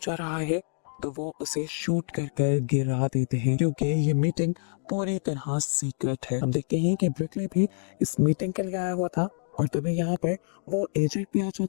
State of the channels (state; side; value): silent; right; digital silence